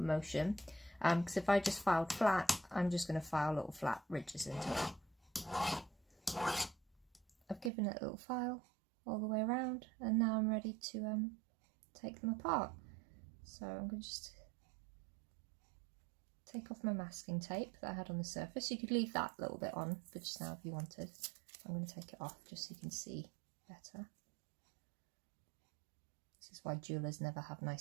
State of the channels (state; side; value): drops out; left; at 7.7 s